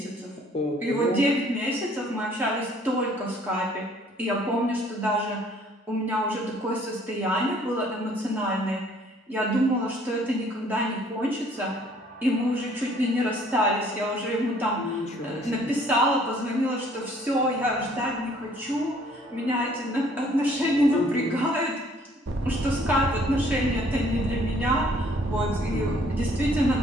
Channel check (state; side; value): normal; both; correlation 0.59